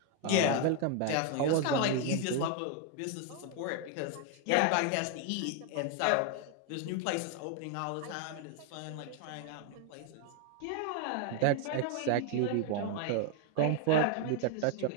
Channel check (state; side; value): different; both; correlation 0.01